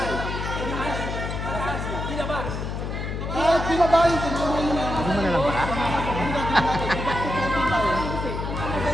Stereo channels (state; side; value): noise; left; hum, 4 dB below the sound